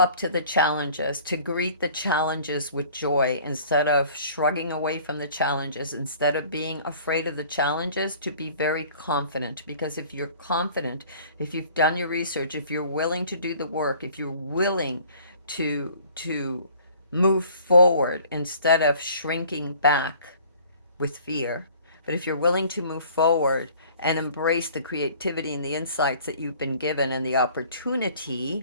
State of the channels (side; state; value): both; inverted; correlation -0.51